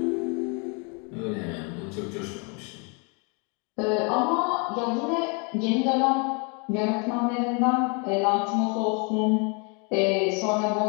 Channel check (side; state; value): right; quieter; 34.2 dB